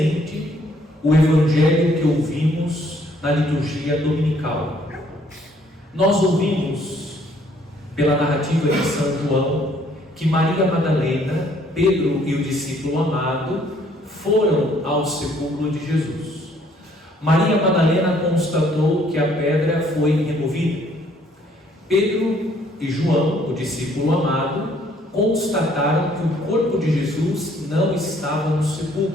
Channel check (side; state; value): both; normal; correlation 0.63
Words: o Evangelho que ouvimos na liturgia dominical. Nós ouvimos, pela narrativa de São João, que Maria Madalena, Pedro e o discípulo amado foram ao sepulcro de Jesus. Maria Madalena constatou que a pedra foi removida. Pedro e João, o discípulo amado, constataram que o corpo de Jesus não estava no